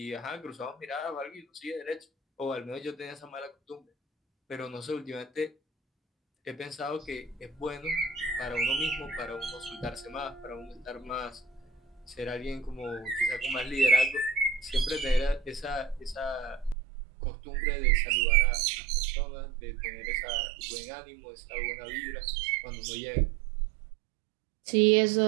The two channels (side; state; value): left; drops out; at 16.8 s